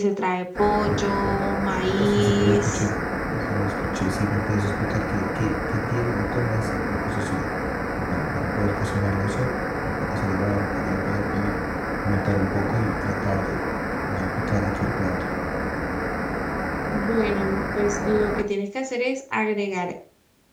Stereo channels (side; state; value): both; identical; correlation 1.00